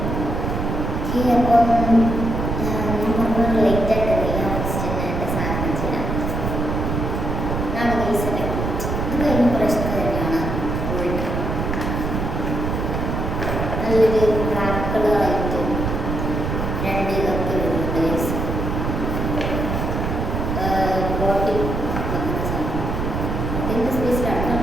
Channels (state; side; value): noise; right; rumble, 2 dB below the sound